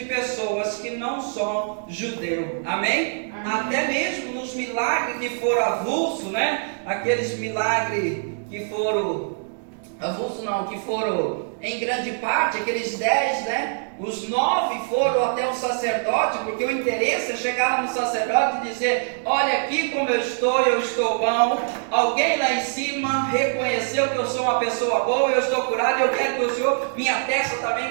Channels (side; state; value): left; silent; digital silence